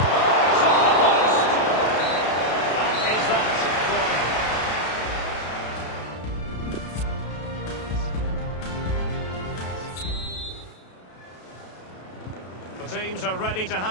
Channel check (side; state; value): right; late; 32 ms